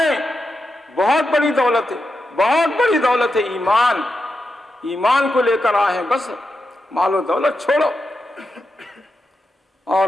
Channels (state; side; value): normal; both; correlation 0.87